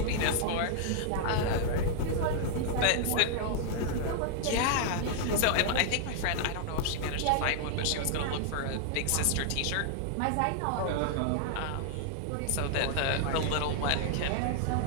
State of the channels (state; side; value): different; both; correlation -0.01